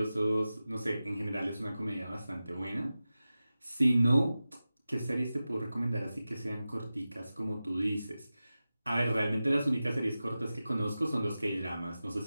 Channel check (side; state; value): both; inverted; correlation -0.95